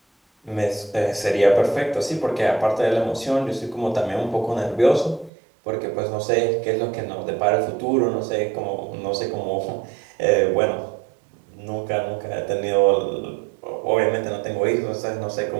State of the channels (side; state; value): left; drops out; at 5.3 s